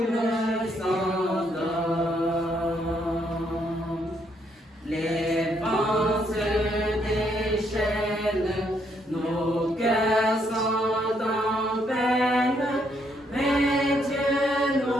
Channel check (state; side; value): normal; both; correlation 0.73